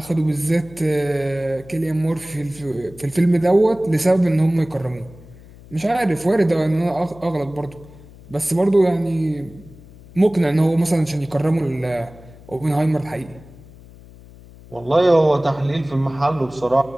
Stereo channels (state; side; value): noise; left; hum, 21 dB below the sound